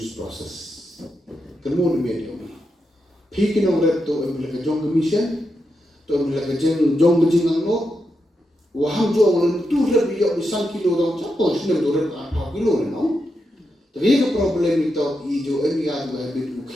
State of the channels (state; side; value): normal; both; correlation 0.86